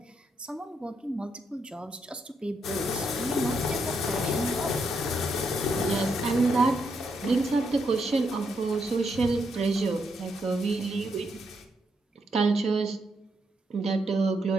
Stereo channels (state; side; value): normal; both; correlation 0.79